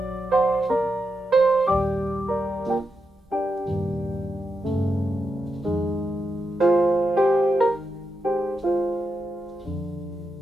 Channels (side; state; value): both; normal; correlation 0.86